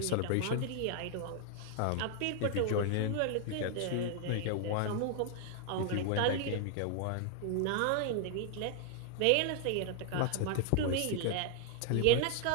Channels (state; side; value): different; both; correlation 0.00